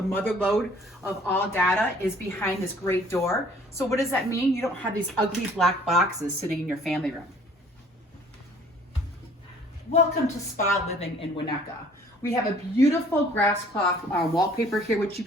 mother lode of all data, is behind this great door. So what does that mean? You don't have these ugly black boxes sitting in your family room. Welcome to Spa Living in Winnetka. We have a beautiful grass cloth wallpaper here, which you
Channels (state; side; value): normal; both; correlation 0.55